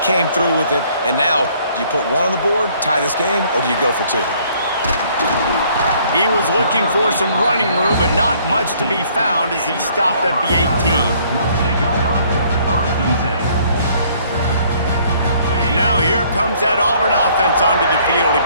through with it. And now, do you put 1 on the board, tie this game, or do you go for 2? He was looking for some running room, but not much to be found as he stopped at the 18. Now here comes that Auburn offense onto the field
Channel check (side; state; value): both; inverted; correlation -0.61